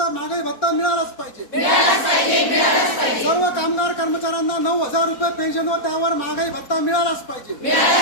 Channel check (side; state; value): right; late; 4.1 ms